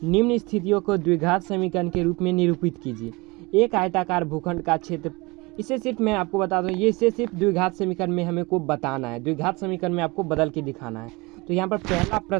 निम्न स्थितियों को द्विघात समीकरण के रूप में निरूपित कीजिए। एक आयताकार भूखंड का क्षेत्र, इसे सिर्फ मैं आपको बता दूँ, ये इसे सिर्फ द्विघात समीकरण में हमें को बताना है, द्विघात समीकरण में आपको बदल के दिखाना है। तो यहाँ पर पहला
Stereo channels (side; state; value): left; quieter; 25.0 dB